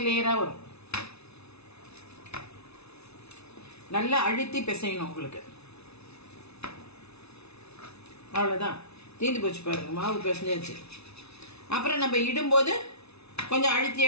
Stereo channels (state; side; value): late; right; 0.80 ms